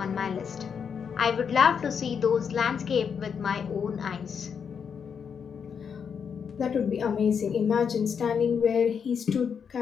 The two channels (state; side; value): quieter; right; 6.8 dB